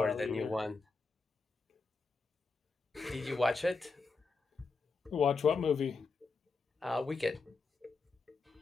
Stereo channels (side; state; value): right; quieter; 4.2 dB